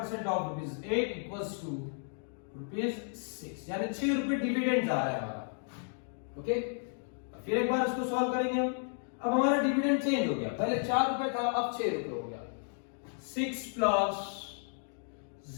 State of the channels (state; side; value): silent; right; 56 dB below the other